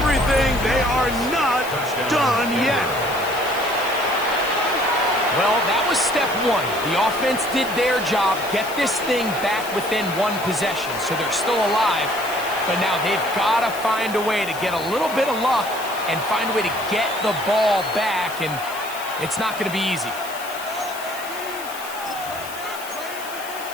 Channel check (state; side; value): noise; left; hiss, 14 dB below the sound